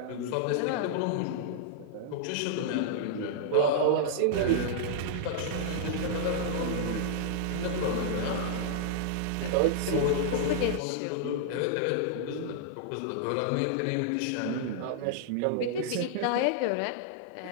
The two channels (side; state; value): both; different; correlation -0.01